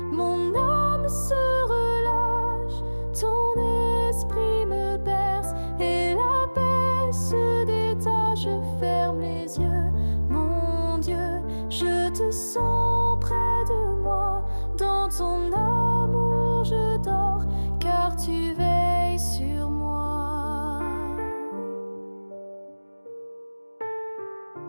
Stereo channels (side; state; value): both; inverted; correlation -1.00